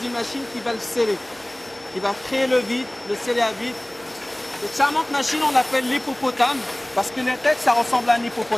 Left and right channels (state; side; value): noise; right; hum, 29 dB below the sound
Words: machine qui va le sceller. Qui va créer le vide, le sceller à vide. Cette charmante machine, on l'appelle l'hippopotame, parce que la tête, ça ressemble à un